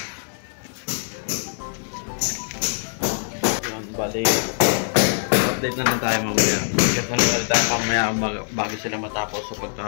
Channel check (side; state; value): right; silent; digital silence